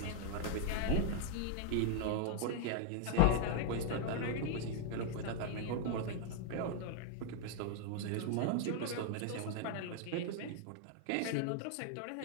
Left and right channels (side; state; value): both; different; correlation 0.00